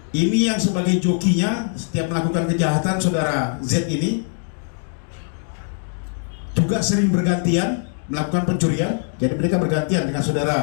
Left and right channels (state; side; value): silent; right; 65 dB below the other